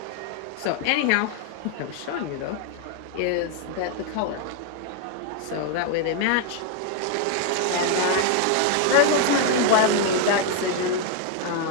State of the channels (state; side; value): different; both; correlation 0.01